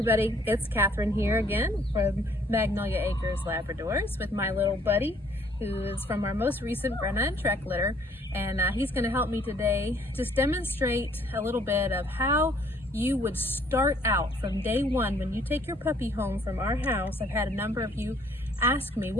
it's Catherine here again from Magnolia Acres Labradors with my little buddy who is from our most recent Brenna and Trek litter, and he's going to help me today just demonstrate a little bit of how you would start out from day one when you take your puppy home from our house. I've had a number of you ask me,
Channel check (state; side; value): normal; both; correlation 0.61